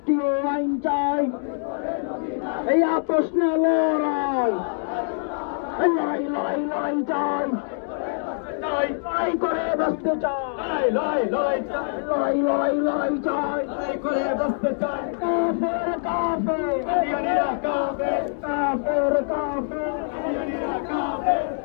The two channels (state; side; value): silent; right; digital silence